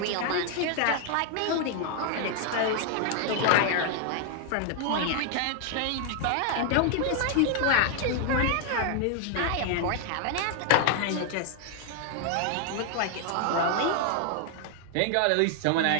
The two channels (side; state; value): both; different; correlation 0.00